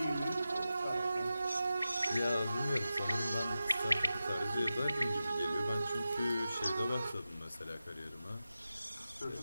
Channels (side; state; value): both; inverted; correlation -0.92